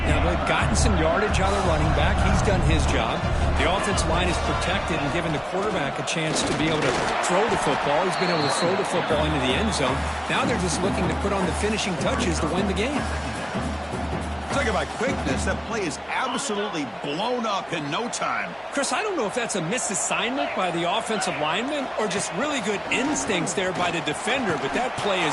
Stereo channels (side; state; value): both; identical; correlation 1.00